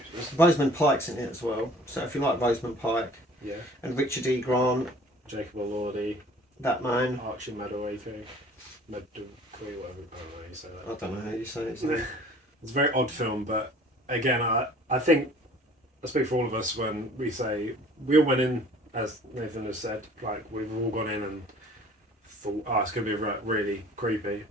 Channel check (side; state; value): both; normal; correlation 0.50